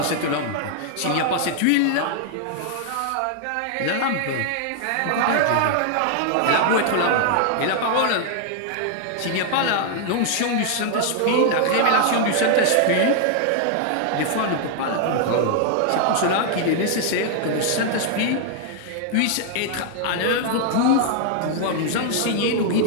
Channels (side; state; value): both; different; correlation 0.00